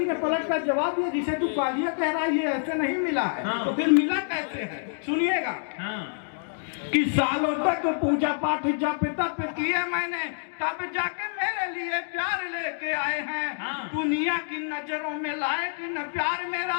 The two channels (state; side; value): silent; right; digital silence